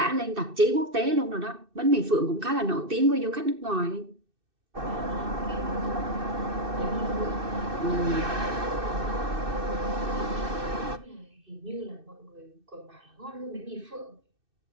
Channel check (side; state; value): left; late; 2.6 ms